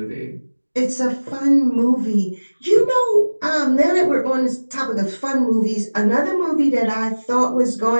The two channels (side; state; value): both; inverted; correlation -1.00